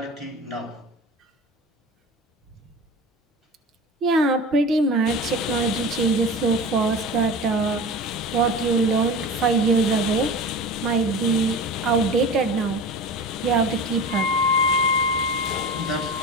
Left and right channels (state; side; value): normal; both; correlation 0.32